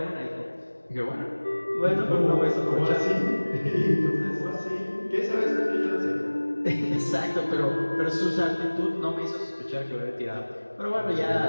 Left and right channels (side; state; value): both; inverted; correlation -1.00